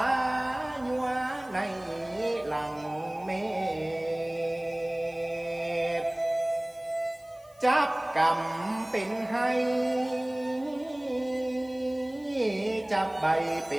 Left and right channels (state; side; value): noise; left; hiss, 28 dB below the sound